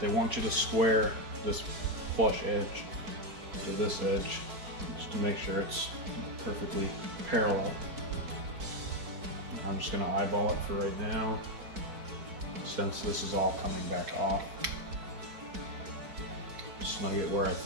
They want you to square this flush edge to this edge just to make sure it's perfectly parallel. I'm just going to eyeball it for right now, since this is all coming back off. Snug it where I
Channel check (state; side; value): late; left; 4.6 ms